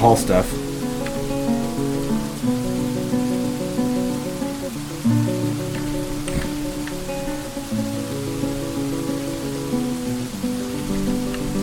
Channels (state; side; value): identical; both; correlation 1.00